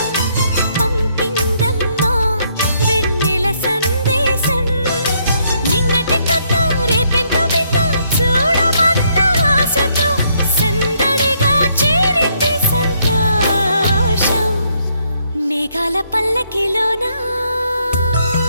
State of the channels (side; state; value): both; inverted; correlation -0.72